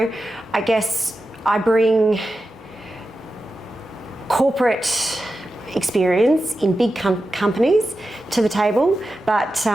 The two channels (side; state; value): both; normal; correlation 0.91